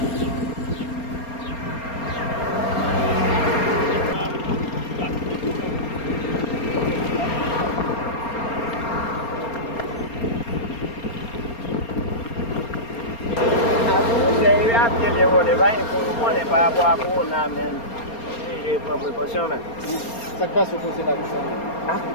vrai. On n'est pas à boire pour on a même. J'ai pris précaution. Ça passe au conseil là, ça. Ah,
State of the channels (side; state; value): right; late; 4.3 ms